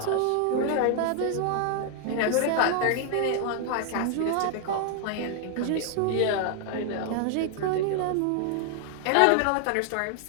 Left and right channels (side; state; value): both; different; correlation 0.00